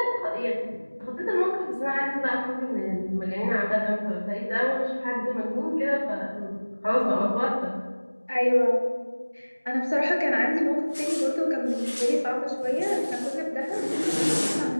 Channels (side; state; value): both; inverted; correlation -1.00